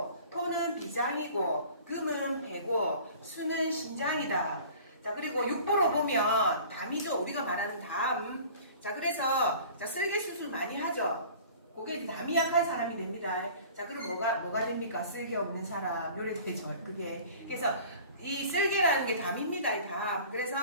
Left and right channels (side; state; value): both; inverted; correlation -0.45